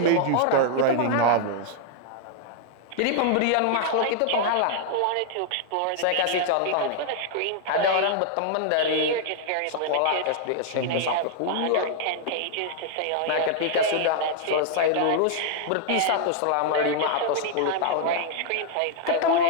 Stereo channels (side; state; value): both; different; correlation -0.01